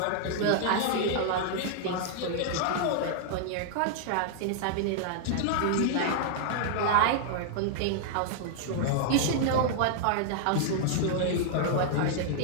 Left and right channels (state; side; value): different; both; correlation -0.01